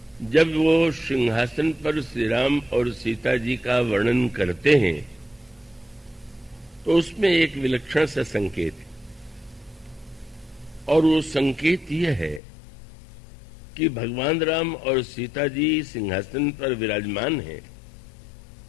जब वो सिंहासन पर श्री राम और सीता जी का वर्णन करते हैं तो उसमें एक विलक्षण सा संकेत है। और वो संकेत यह है कि भगवान राम और सीता जी सिंहासन पर विराजमान हैं,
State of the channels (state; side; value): drops out; right; at 12.4 s